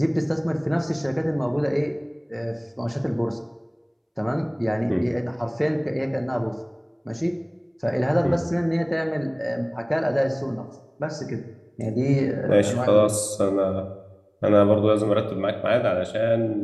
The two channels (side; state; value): both; identical; correlation 1.00